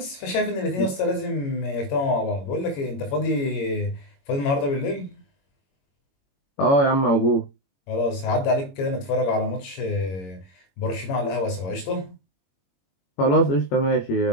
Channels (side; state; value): right; late; 22 ms